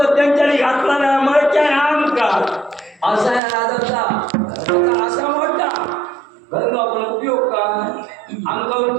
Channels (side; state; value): left; drops out; at 3.4 s